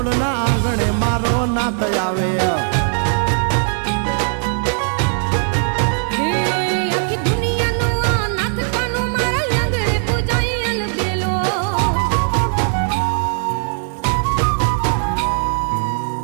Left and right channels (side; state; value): left; silent; 59 dB below the other